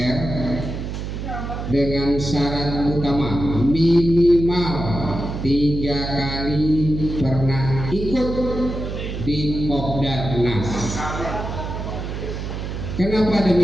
dengan syarat utama minimal 3 kali pernah ikut di Kopdarnas. Kenapa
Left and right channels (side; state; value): right; noise; hum, 5 dB below the sound